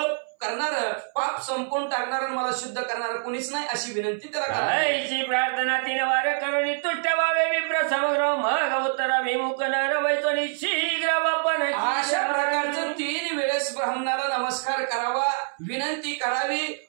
करणार, पाप संपून टाकणार, मला शुद्ध करणार कोणीच नाही अशी विनंती त्याला करायची. प्रार्थना 3 वार करुणी तुट्ट व्हावे विप्र समग्र, मग उत्तराभिमुख नर वैतोनी शीघ्र वापन. अशा प्रकारचं 3 वेळेस ब्राह्मणाला नमस्कार करावा, विनंती करावी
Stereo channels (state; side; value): silent; left; 61 dB below the other